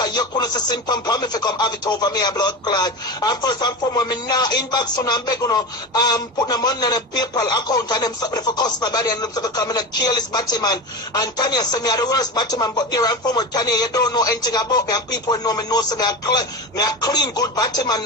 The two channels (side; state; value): both; normal; correlation 0.24